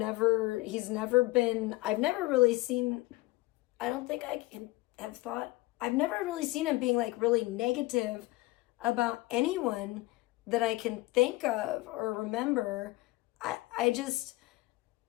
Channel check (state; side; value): quieter; right; 20.5 dB